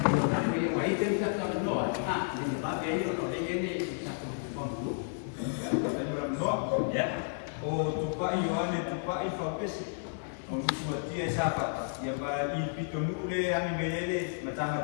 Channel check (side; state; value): right; silent; digital silence